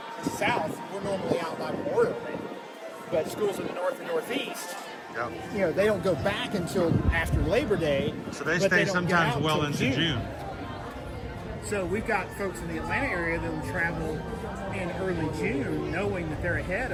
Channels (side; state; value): both; identical; correlation 1.00